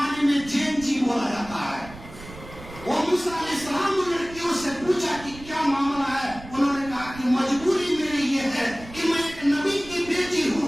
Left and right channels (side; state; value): right; noise; rumble, 16 dB below the sound